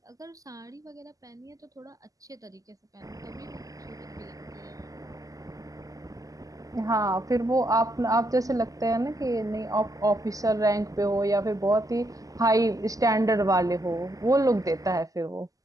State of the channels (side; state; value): left; late; 0.17 ms